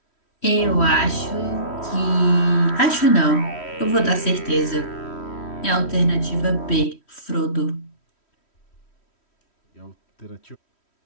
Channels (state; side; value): late; right; 3.1 ms